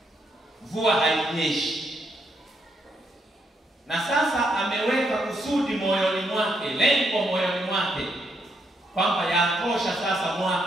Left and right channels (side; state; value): both; normal; correlation 0.77